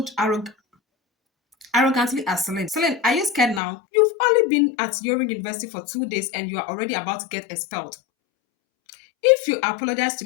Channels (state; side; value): drops out; right; at 3.6 s